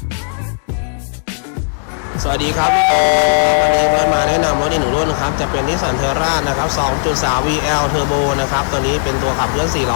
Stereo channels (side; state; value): right; silent; digital silence